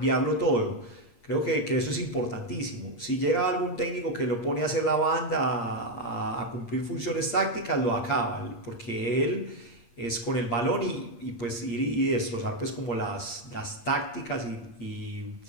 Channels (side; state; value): right; late; 8.6 ms